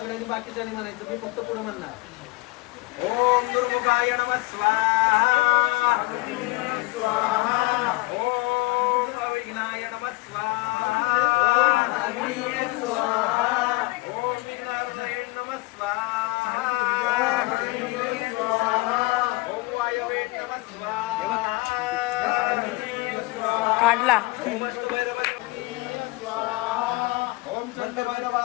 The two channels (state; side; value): quieter; right; 23.5 dB